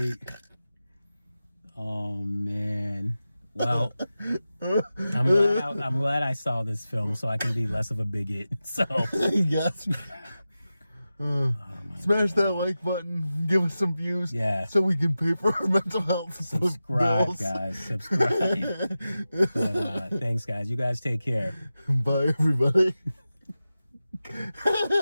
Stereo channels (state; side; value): inverted; both; correlation -0.93